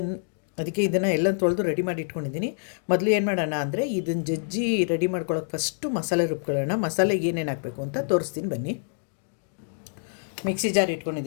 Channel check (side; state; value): right; silent; digital silence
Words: ಅದಕ್ಕೆ ಇದನ್ನು ಎಲ್ಲ ತೊಳೆದು ರೆಡಿ ಮಾಡಿ ಇಟ್ಕೊಂಡಿದ್ದೀನಿ. ಮೊದಲು ಏನು ಮಾಡೋಣ ಅಂದರೆ ಇದನ್ನು ಜಜ್ಜಿ ರೆಡಿ ಮಾಡ್ಕೊಳ್ಳೋಕೆ ಫಸ್ಟು ಮಸಾಲೆ ರುಬ್ಕೊಳ್ಳೋಣ. ಮಸಾಲೆಗೆ ಏನೇನು ಹಾಕಬೇಕು ಅಂತ ತೋರಿಸ್ತೀನಿ ಬನ್ನಿ. ಮಿಕ್ಸಿ ಜಾರ್